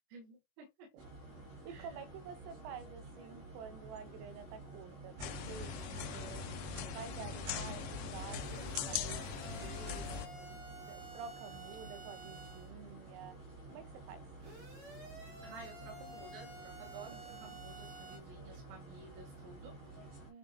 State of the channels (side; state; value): left; late; 22 ms